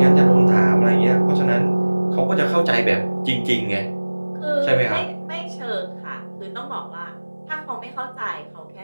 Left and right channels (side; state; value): both; inverted; correlation -1.00